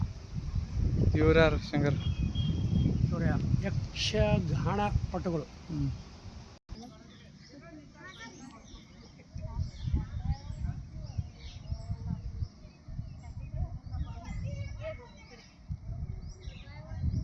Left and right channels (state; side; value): identical; both; correlation 1.00